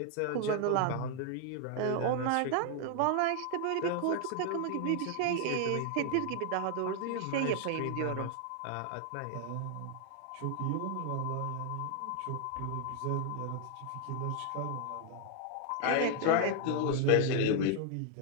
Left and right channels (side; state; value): both; different; correlation 0.00